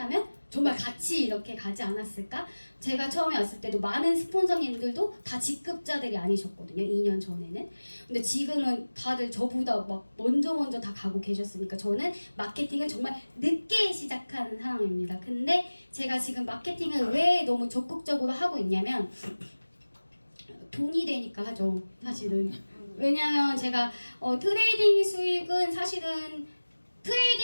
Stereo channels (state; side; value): inverted; both; correlation -1.00